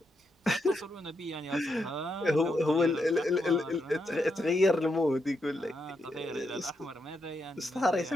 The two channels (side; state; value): both; normal; correlation 0.82